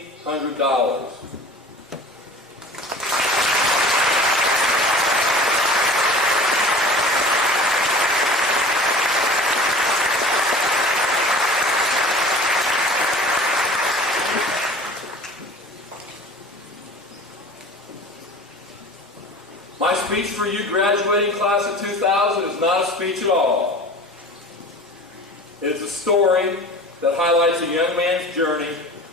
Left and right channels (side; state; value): both; normal; correlation 0.41